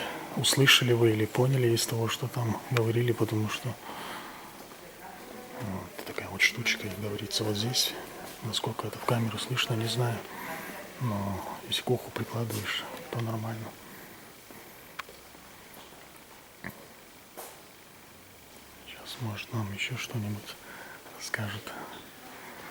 услышали вы или поняли из того, что там говорили, потому что вот такая вот штучка, как говорится, вот здесь. Насколько это в камеру слышно, не знаю. Но если к уху прикладываешь, то нормально. Сейчас, может, нам еще что-нибудь расскажет.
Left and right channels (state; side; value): identical; both; correlation 1.00